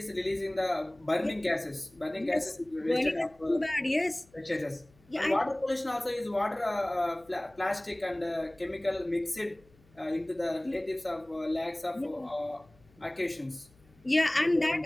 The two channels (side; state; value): left; noise; hum, 29 dB below the sound